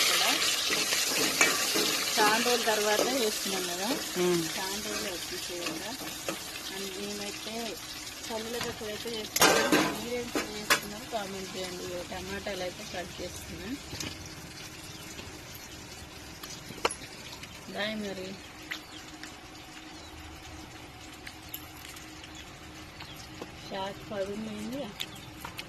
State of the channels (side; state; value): both; identical; correlation 1.00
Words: చాలా రోజుల తర్వాత వేస్తున్నాం కదా, చాలా రోజులు వచ్చేసేయంగా. అండ్ మేమైతే పల్లీల పచ్చడి అయితే చేస్తున్నాం. మీరేం చేస్తున్నారు కామెంట్ చేయండి. టమాటాలు అయితే కట్ చేస్తున్నా. దాయి మరి షార్ట్ పడుంది,